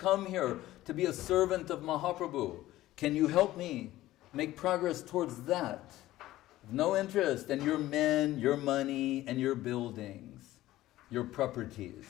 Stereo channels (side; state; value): right; quieter; 15.6 dB